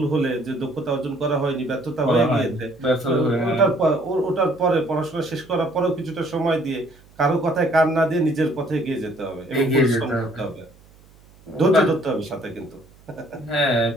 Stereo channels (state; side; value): noise; right; hum, 27 dB below the sound